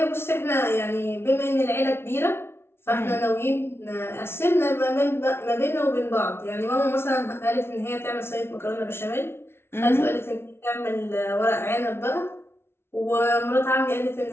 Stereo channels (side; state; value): right; late; 0.12 ms